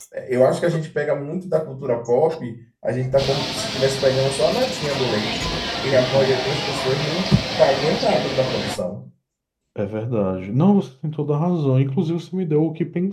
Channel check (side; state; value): both; identical; correlation 1.00